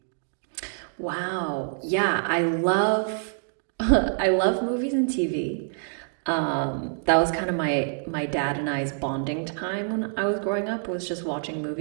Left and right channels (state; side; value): silent; left; digital silence